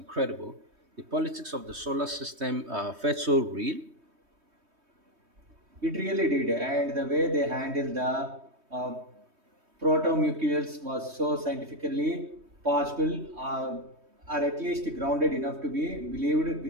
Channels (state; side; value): late; left; 3.2 ms